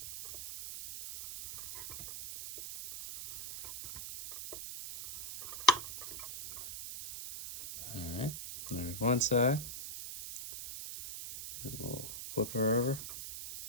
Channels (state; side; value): noise; right; hiss, 8 dB below the sound